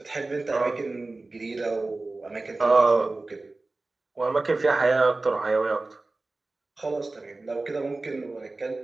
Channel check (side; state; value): left; quieter; 3.2 dB